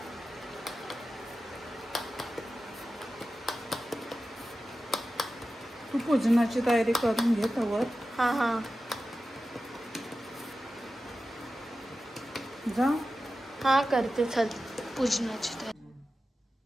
तू पूजनाची तयारी करून घे तवर. हां हां जा. हां करते. चल पूजनाची तयारी.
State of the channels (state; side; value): normal; both; correlation 0.93